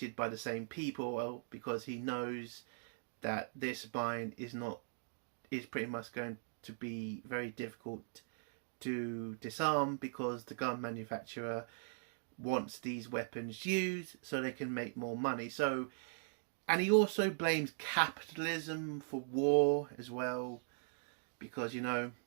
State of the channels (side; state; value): left; silent; digital silence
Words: by the same people, because he knows that this mine is pretty much going to be very difficult to disarm because the gun manufacturer wants these weapons used so they can make more money. So, and he also blames capitalism for war as well, because, you know,